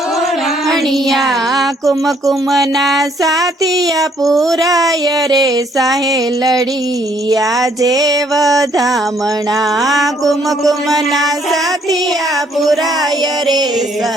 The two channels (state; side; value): normal; both; correlation 0.66